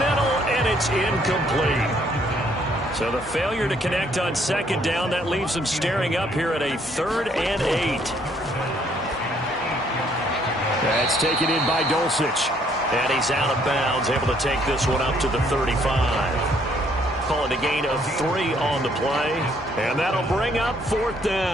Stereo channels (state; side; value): normal; both; correlation 0.66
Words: and it's incomplete. So the failure to connect on 2nd down, that leaves them staring up here at a 3rd and 8. That's taken in by Dulcich. And he's out of bounds, able to take this one up to the 35. Calling a gain of 3 on the play. And that'll bring up 4th